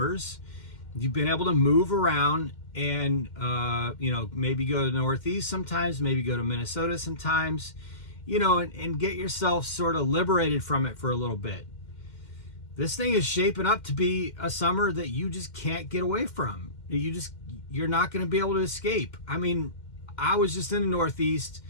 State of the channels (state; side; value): late; right; 2.1 ms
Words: you've been able to move around and, maybe go to the Northeast sometimes, maybe go to Minnesota sometimes, and get yourself sort of liberated from it for a little bit. This thing is shaping up to be a summer that you just can't get away from. You're not going to be able to escape. I mean, I was just in the Northeast.